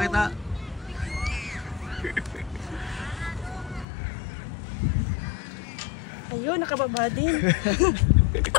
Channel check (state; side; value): drops out; right; at 3.9 s